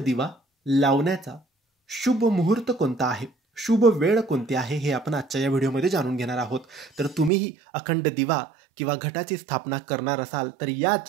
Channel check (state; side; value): drops out; left; at 7.3 s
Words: लावण्याचा शुभ मुहूर्त कोणता आहे, शुभ वेळ कोणती आहे, हे आपण आजच्या या व्हिडिओमध्ये जाणून घेणार आहोत. तर तुम्हीही अखंड दिवा किंवा घटाची स्थापना करणार असाल तर